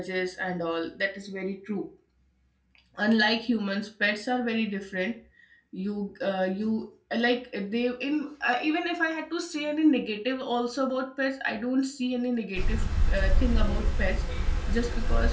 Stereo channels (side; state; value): both; identical; correlation 1.00